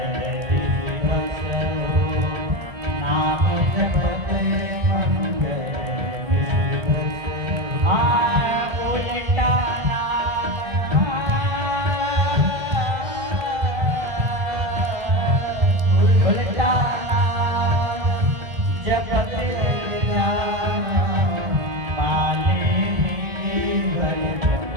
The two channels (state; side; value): late; left; 1.6 ms